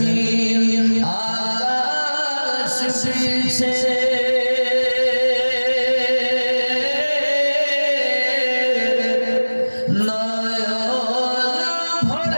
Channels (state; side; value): inverted; both; correlation -1.00